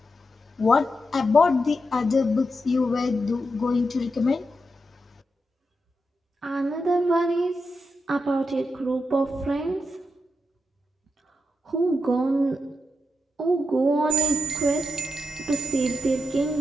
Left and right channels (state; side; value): normal; both; correlation 0.85